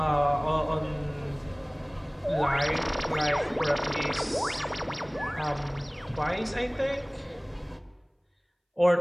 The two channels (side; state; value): both; identical; correlation 1.00